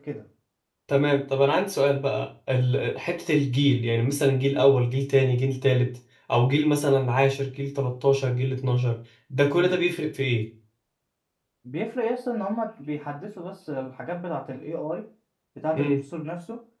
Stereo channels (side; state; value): both; identical; correlation 1.00